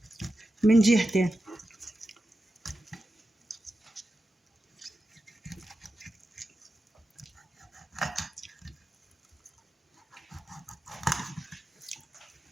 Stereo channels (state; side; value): normal; both; correlation 0.91